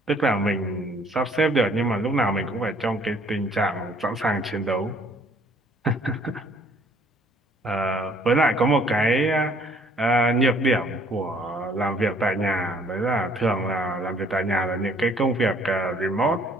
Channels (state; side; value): normal; both; correlation 0.60